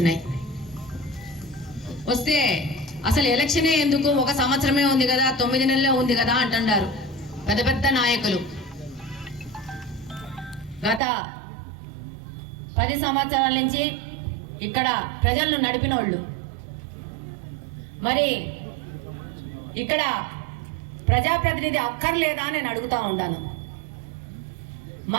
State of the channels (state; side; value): drops out; left; at 11.0 s